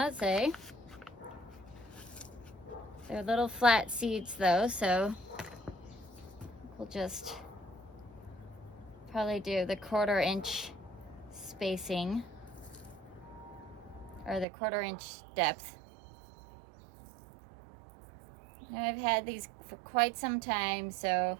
say. They're little flat seeds though, so we'll just probably do the 1/4 inch spacing. or the 1/4 inch depth. Now I've had these for quite some time, so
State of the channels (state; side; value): drops out; left; at 14.5 s